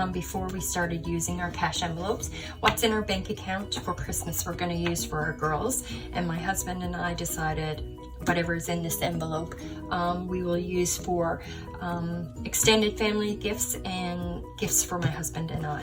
before we started using our cash envelopes. What's in our bank account for Christmas we're going to use for our girls, and my husband and I decided whatever's in this envelope we will use for extended family gifts and gifts for my husband and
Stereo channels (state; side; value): identical; both; correlation 1.00